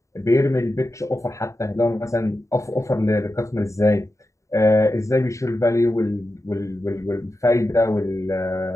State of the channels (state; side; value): late; right; 0.15 ms